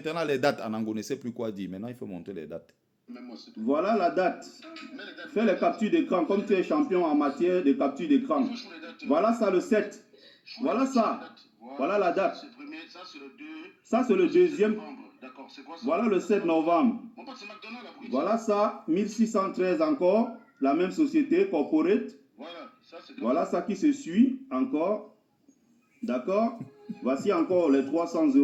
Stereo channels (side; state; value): both; identical; correlation 1.00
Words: les dates. Anango ne sait plus quoi dire. Maintenant, il faut montrer les dates. Voilà la date. Fais les captures d'écran comme tu es champion en matière de capture d'écran. Voilà ça le 7. Voilà ça. Voilà la date. Ça, c'est le deuxième. Voilà le 7 novembre. Voilà ça, 1613 encore. La même société, Corporate. Voilà ça qui se suit encore. D'accord? Voici encore les 300